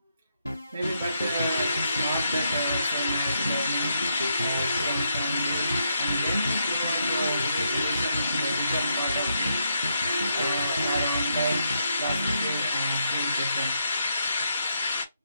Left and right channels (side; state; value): both; inverted; correlation -0.79